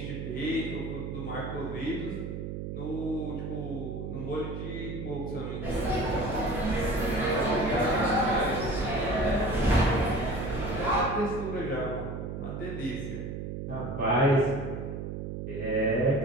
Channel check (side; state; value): right; noise; hum, 5 dB below the sound